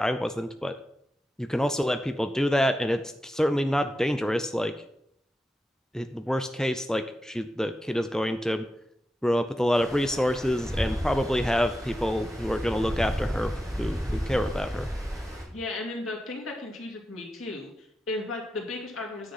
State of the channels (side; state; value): both; normal; correlation 0.90